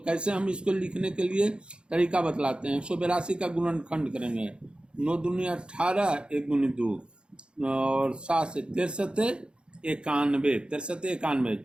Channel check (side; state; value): left; late; 0.053 ms